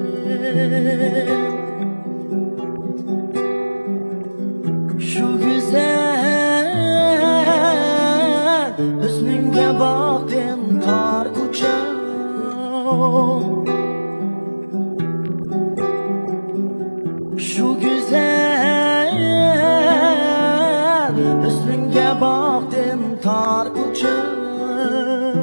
şu güzel hüsnünge baktım tar uçağım. Şu güzel hüsnünge baktım tar uçağım.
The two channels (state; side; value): inverted; both; correlation -1.00